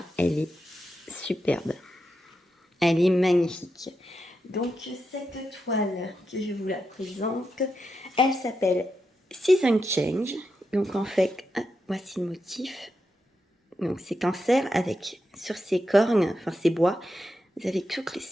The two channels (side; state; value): both; normal; correlation 0.86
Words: elle est superbe. Elle est magnifique. Donc, cette toile que je vous la présente, elle s'appelle Season Change. Donc, en fait, voici le motif. Donc, c'est cancer avec, sur ses cornes, enfin ses bois, vous avez toutes les